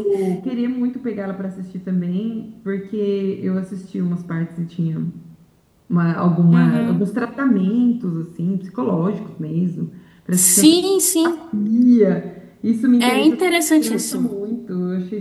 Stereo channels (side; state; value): both; identical; correlation 1.00